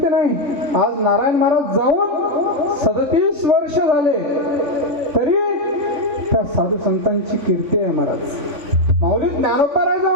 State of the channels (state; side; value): late; left; 3.7 ms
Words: नाही. आज नारायण महाराज जाऊन 37 वर्ष झाले तरी त्या साधू संतांची कीर्ती आहे महाराज. माऊली ज्ञानोबा